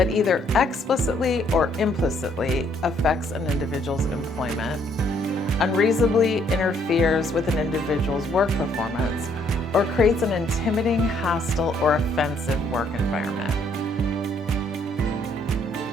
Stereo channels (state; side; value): normal; both; correlation 0.67